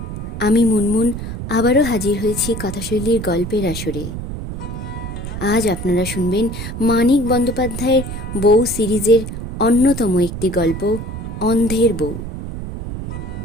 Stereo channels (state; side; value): noise; right; rumble, 7 dB below the sound